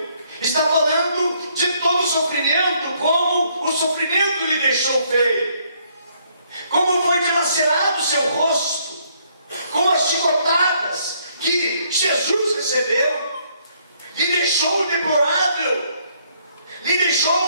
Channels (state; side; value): inverted; both; correlation -0.69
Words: está falando de todo o sofrimento, como o sofrimento lhe deixou feio, como foi dilacerado o seu rosto, como as chicotadas que Jesus recebeu, lhe deixou deplorável, lhe